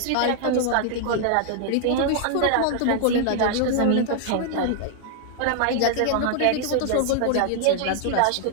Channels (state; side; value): different; both; correlation 0.00